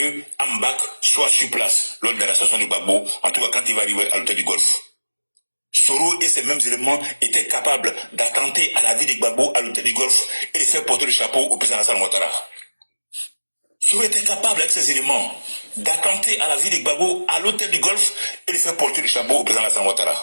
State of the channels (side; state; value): both; inverted; correlation -1.00